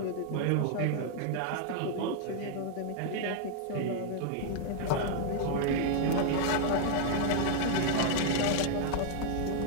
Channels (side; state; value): both; different; correlation -0.01